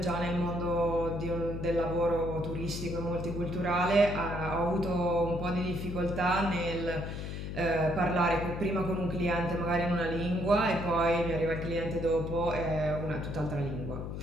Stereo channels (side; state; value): left; noise; hum, 6 dB below the sound